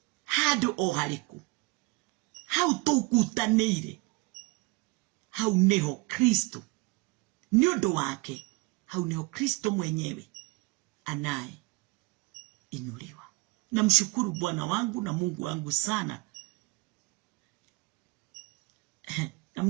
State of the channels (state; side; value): quieter; left; 25.0 dB